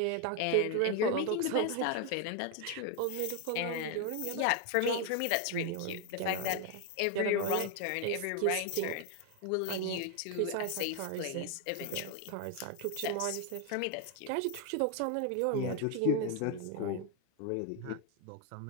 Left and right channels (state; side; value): different; both; correlation 0.01